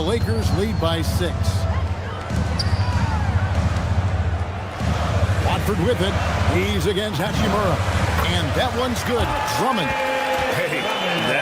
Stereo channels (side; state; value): both; identical; correlation 1.00